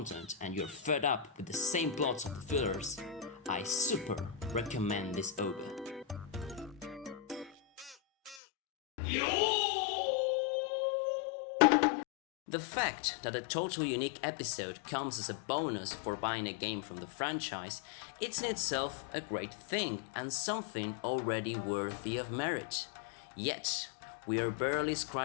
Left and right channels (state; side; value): drops out; right; at 8.3 s